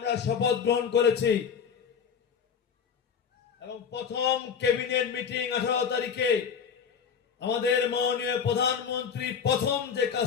শপথ গ্রহণ করেছি এবং প্রথম ক্যাবিনেট মিটিং 18 তারিখে আমাদের মাননীয় প্রধানমন্ত্রী প্রথম যে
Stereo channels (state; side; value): quieter; right; 6.8 dB